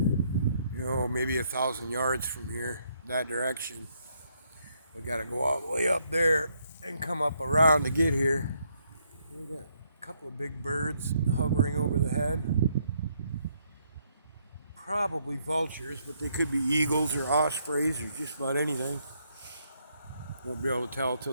maybe 1,000 yards from here, that direction. We got to go all the way up there and come up around to get here. We got a couple of big birds hovering over the head. Probably vultures, but they could be eagles or ospreys or just about anything. Won't be able to tell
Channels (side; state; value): both; inverted; correlation -0.73